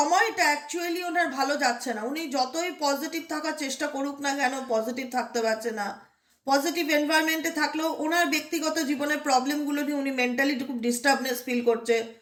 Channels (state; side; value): identical; both; correlation 1.00